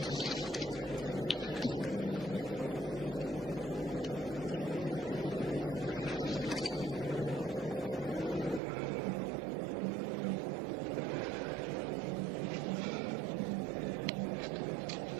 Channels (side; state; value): left; drops out; at 8.6 s